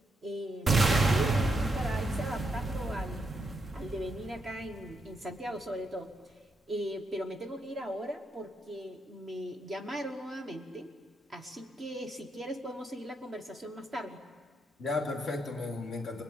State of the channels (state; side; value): normal; both; correlation 0.80